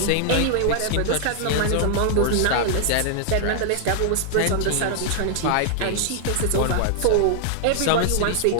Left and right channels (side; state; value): both; different; correlation -0.01